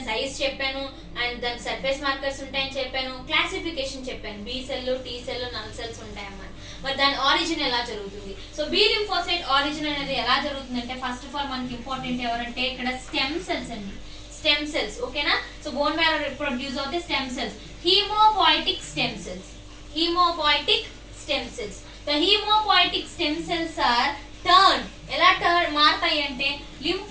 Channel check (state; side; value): identical; both; correlation 1.00